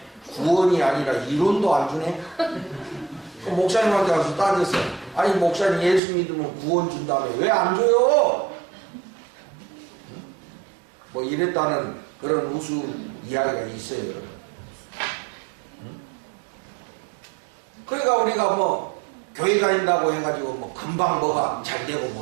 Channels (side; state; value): left; drops out; at 6.0 s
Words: 구원이 아니라 이론도 안 주네? 그 목사님한테 가서 따졌어. 아니 목사님 예수 믿으면 구원 준 다음에 왜 안 줘요? 뭐 이랬다는 그런 우스 이야기가 있어요. 여러분. 그러니까 우리가 뭐 교회 다닌다고 해가지고 뭐 금방 뭐가 잘 되고